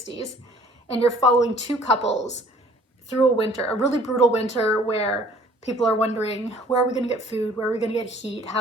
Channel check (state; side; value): normal; both; correlation 0.55